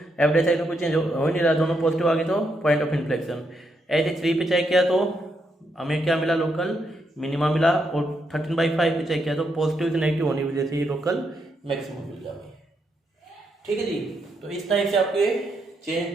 एफ डेसाइड में कोई चेंज हो नहीं रहा, दोनों पॉजिटिव आ गए तो पॉइंट ऑफ इन्फ्लेक्शन। ऐसे 3 पे चेक किया तो हमें क्या मिला, लोकल मिनिमा मिला, और 13/5 पे चेक किया तो पॉजिटिव से नेगेटिव होने की वजह से ही लोकल मैक्सिमम मिल गया हमें। ठीक है जी, तो इस टाइप से आपके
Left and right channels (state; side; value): normal; both; correlation 0.79